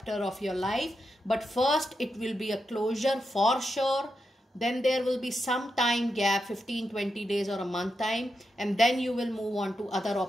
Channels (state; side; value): normal; both; correlation 0.86